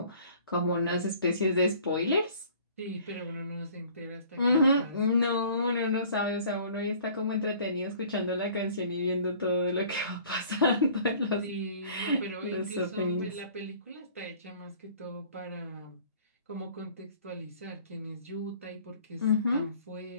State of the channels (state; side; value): inverted; both; correlation -0.52